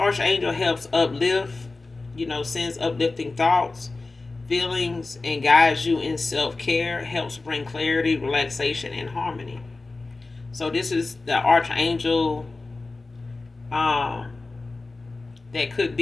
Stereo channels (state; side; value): quieter; right; 3.5 dB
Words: helps uplift, sends uplifting thoughts, feelings, and guides you in self-care, helps bring clarity, relaxation, and harmony. So this is the archangel that could